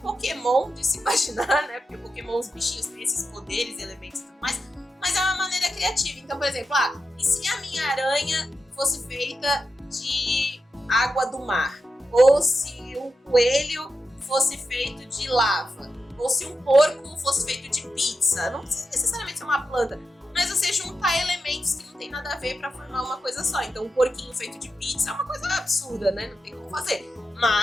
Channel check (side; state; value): both; normal; correlation 0.89